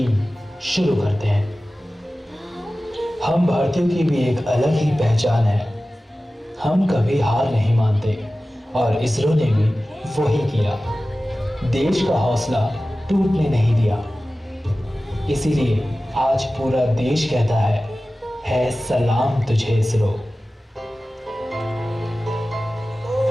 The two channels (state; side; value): normal; both; correlation 0.96